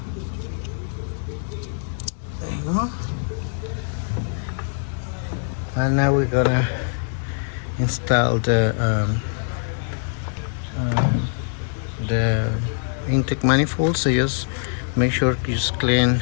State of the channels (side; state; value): right; silent; digital silence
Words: There you go. And now we're gonna install the intake manifold. So just make sure you just clean